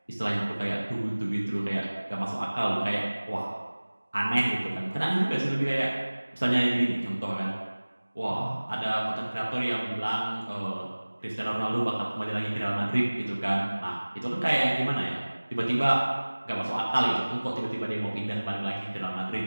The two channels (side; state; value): both; inverted; correlation -1.00